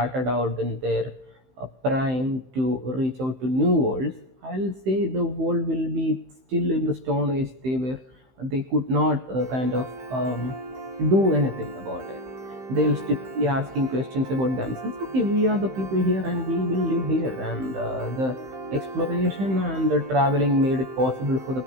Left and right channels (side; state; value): left; late; 15 ms